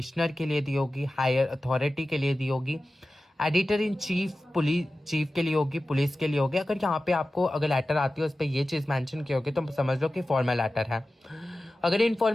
के लिए दी होगी, हायर अथॉरिटी के लिए दी होगी, editor in chief police chief के लिए होगी, पुलिस के लिए होगी। अगर यहाँ पे आपको अगर लेटर आती है उस पर ये चीज़ मेंशन की होगी तो समझ लो कि फॉर्मल लेटर है। अगर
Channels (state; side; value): normal; both; correlation 0.95